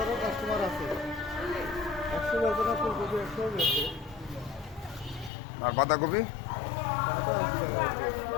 কাস্টমার আছে, 100 ব্যাপারে ফুলকপি 100 বেশি। আর বাঁধাকপি?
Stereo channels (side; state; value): right; drops out; at 5.3 s